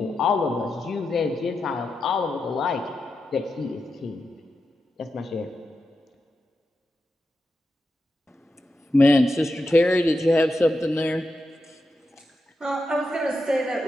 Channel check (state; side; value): normal; both; correlation 0.88